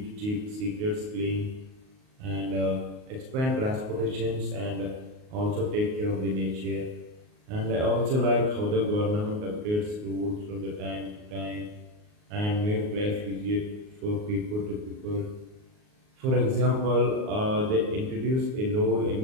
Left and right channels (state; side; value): late; left; 38 ms